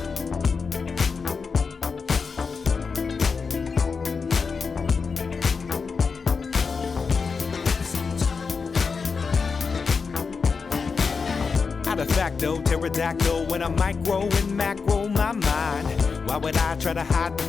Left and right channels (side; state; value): right; quieter; 5.1 dB